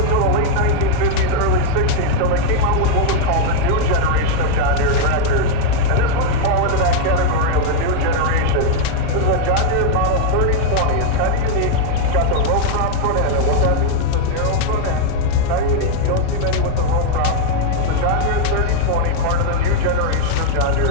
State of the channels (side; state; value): both; different; correlation 0.00